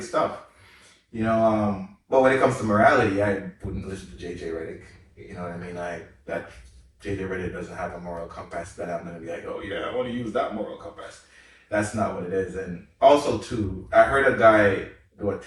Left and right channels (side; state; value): both; identical; correlation 1.00